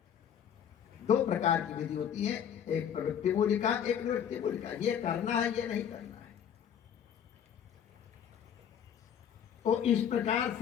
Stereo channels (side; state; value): right; quieter; 8.7 dB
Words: दो प्रकार की विधि होती है, एक प्रवृत्ति मूलिका, एक निवृत्ति मूलिका। ये करना है, ये नहीं करना है। तो इस प्रकार